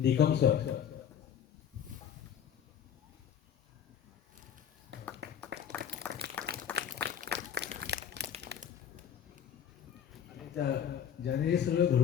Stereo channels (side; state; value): right; quieter; 8.8 dB